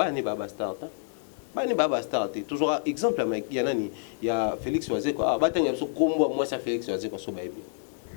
ne baba star bani baba star toujours exemple il y a nani il y a Félix Oazé quoi batanga so kombo moi ça Félix Oazé quoi so baby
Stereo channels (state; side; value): silent; right; 59 dB below the other